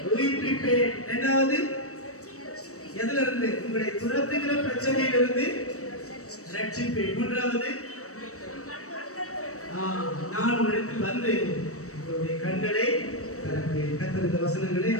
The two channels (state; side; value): late; right; 0.65 ms